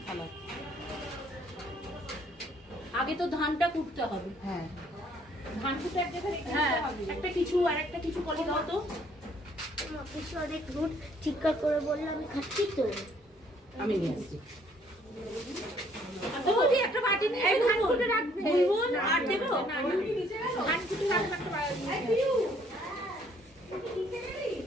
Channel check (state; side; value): normal; both; correlation 0.63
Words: থালা। আগে তো ধানটা কুটতে হবে। হ্যাঁ ধান কুটে এক জায়গায় রেখে দিতে হবে। একটা কিছু আর একটা কিছু কলি দাও তো। কিছু অনেক রুট চিৎকার করে বললে আমি খাচ্ছি তো। আমি নিয়ে আসছি। বৌদি একটা বাটি নিয়ে ধান কুটে রাখবে। বুলবুল আর দেবো? ধান কুটে রাখবে একটা বাটি। হ্যাঁ